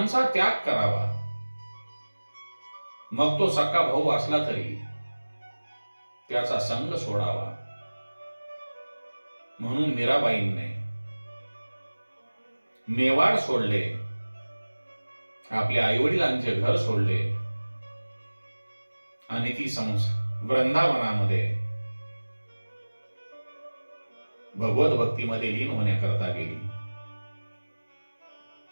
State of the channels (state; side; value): inverted; both; correlation -1.00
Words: त्याग करावा. मग तो सक्का भाऊ असला तरी त्याचा संग सोडावा. म्हणून मीराबाईंने मेवाड सोडले, आपल्या आईवडिलांचे घर सोडले आणि ती वृंदावनामध्ये भगवत भक्तीमध्ये लीन होण्याकरता गेली.